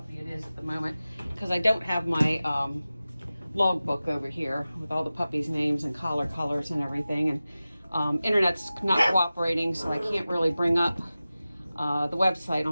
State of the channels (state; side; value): inverted; both; correlation -0.96